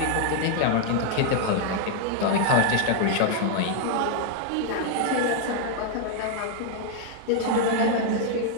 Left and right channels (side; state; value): both; different; correlation 0.00